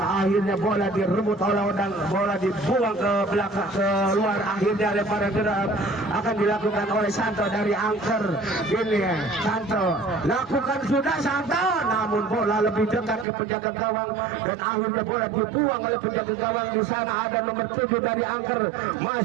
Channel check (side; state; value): left; drops out; at 13.2 s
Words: akhirnya bola direbut oleh Odang, bola dibuang ke belakang keluar. Akhirnya lemparan gerak akan dilakukan oleh Santo dari angker. Ini Santo lakukan sudah Santo, namun bola lebih dekat ke penjaga gawang dan akhirnya bola dibuang oleh penjaga gawang. Di sana ada nomor 7 dari angker,